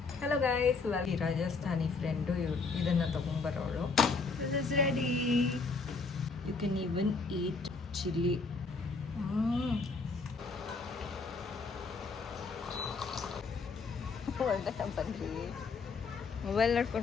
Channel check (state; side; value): quieter; right; 4.4 dB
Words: ಹಲೋ ಗೈಸ್, ಈ ರಾಜಸ್ಥಾನಿ ಫ್ರೆಂಡು ಇದನ್ನು ತೊಗೊಂಬರೋಳು. This is ready. You can even eat chilli. ಒಳ್ಳೆ ಬನ್ರಿ, ಮೊಬೈಲ್